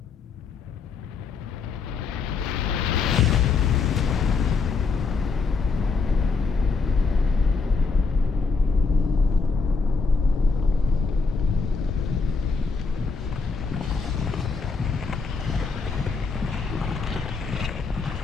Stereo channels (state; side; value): quieter; right; 4.6 dB